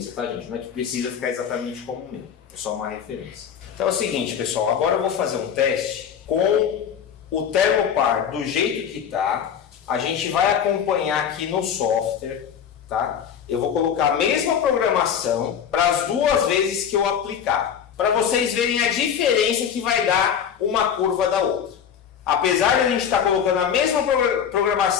tá, gente? Não é que precisa ficar exatamente como o meu. É só uma referência. Então é o seguinte, pessoal. Agora eu vou fazer um teste com o Thermopar do jeito que tá. A gente vai acompanhar aqui no software, tá? Eu vou colocar a mesma programação para as duas vezes que eu aplicar, para vocês verem a diferença que vai dar uma curva da outra. Apesar de a gente estar colocando a mesma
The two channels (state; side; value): quieter; right; 8.1 dB